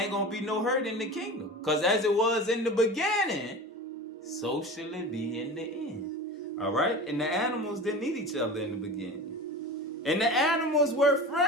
going to be no hurt in the kingdom. Because as it was in the beginning, so shall it be in the end. All right? And the animals didn't eat each other in the beginning. And the animals were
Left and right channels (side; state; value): both; normal; correlation 0.33